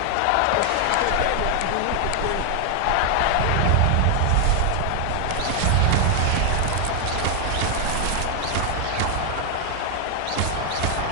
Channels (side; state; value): both; different; correlation 0.00